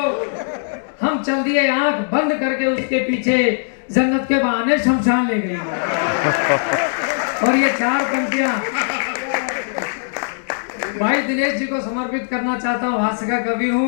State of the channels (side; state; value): right; silent; digital silence